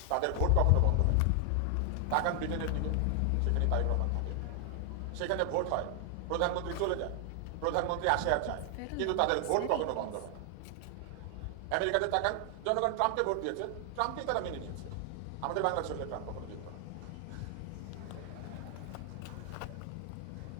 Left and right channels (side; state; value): both; different; correlation 0.00